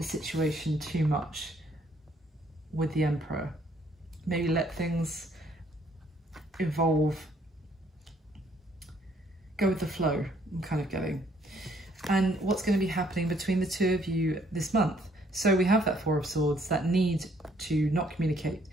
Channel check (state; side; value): normal; both; correlation 0.65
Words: situation too much with the Emperor. Maybe let things evolve. Go with the flow, I'm kind of getting. And what's going to be happening between the two of you this month. So we have that Four of Swords, that need to not communicate.